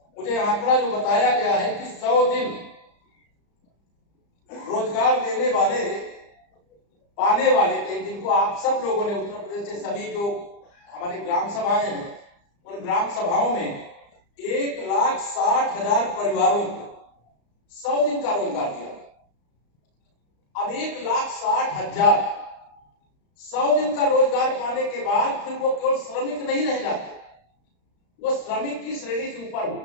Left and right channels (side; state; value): right; late; 35 ms